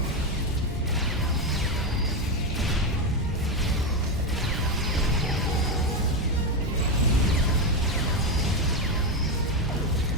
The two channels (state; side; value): normal; both; correlation 0.11